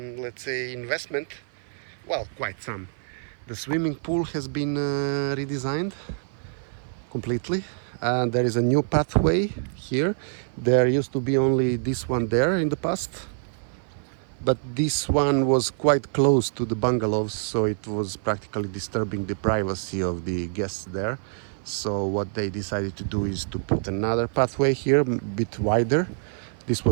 let's say investment. Well, quite some. The swimming pool has been redesigned completely, and there is a new pathway here. There used to be only this one there in the past, but this one was quite close to the bungalows, so it was practically disturbing the privacy of the guests there. So what they decided to do is to put another pathway here, a bit wider. This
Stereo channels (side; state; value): left; silent; 56 dB below the other